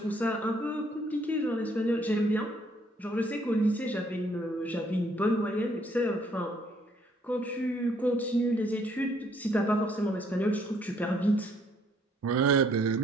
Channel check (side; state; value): both; normal; correlation 0.66